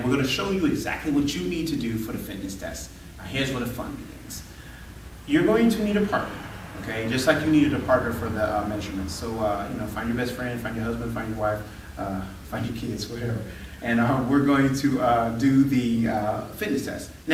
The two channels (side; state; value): both; identical; correlation 1.00